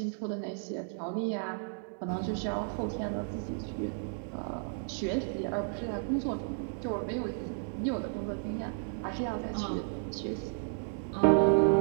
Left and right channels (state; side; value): silent; left; 56 dB below the other